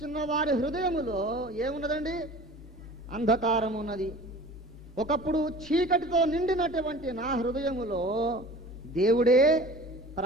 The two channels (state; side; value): normal; both; correlation 0.42